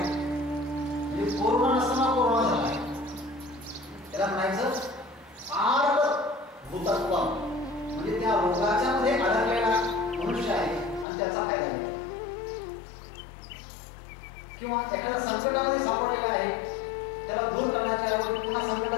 कोरोना नसताना कोरोना झाला आहे, त्याला म्हणायचं आर्ध भूतत्व, म्हणजे त्या रोगाच्या मध्ये अडकलेला मनुष्य आहे आणि त्याचा फायदा घेतो. किंवा एखाद्या संकटामध्ये सापडलेला आहे, त्याला दूर करण्याच्या ऐवजी पुन्हा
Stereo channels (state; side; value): drops out; right; at 11.1 s